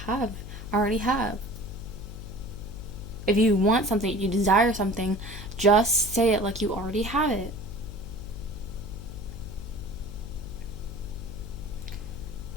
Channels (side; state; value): left; noise; hum, 10 dB below the sound